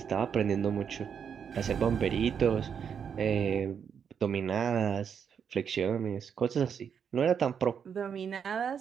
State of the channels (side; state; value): left; quieter; 7.3 dB